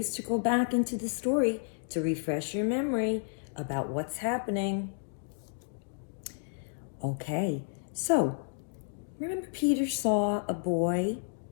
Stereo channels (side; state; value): right; silent; digital silence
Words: to go back into the story to refresh your memory about what's happening. Okay, so remember Peter saw a boy